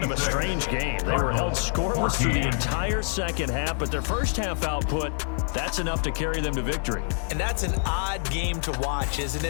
of a strange game. They were held scoreless through the entire second half, but their first half output, that's enough to carry them to victory. And that's an odd game to watch, isn't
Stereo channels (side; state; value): right; silent; 61 dB below the other